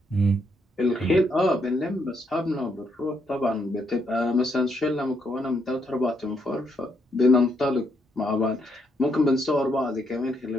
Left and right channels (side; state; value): both; normal; correlation 0.75